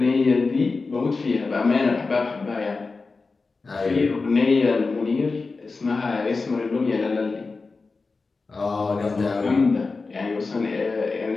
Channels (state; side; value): quieter; right; 4.1 dB